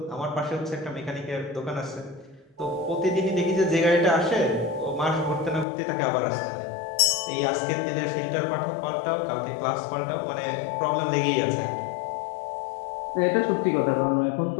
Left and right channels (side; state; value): right; drops out; at 5.7 s